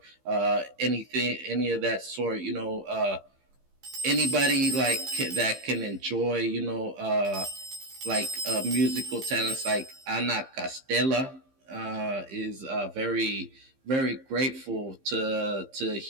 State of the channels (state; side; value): late; left; 15 ms